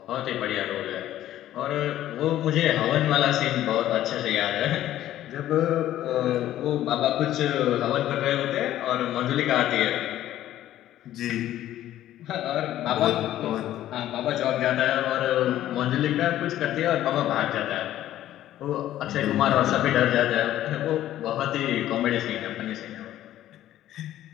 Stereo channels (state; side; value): quieter; right; 13.1 dB